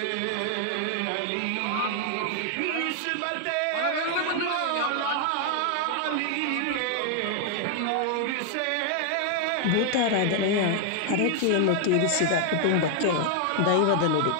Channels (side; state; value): both; different; correlation 0.00